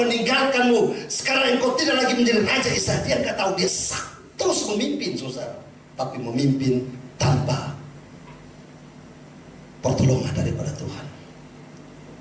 sekarang engkau tidak lagi menjadi raja Israel. Dia gak tahu, dia terus memimpin, saudara, tapi memimpin tanpa pertolongan daripada Tuhan.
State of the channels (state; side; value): identical; both; correlation 1.00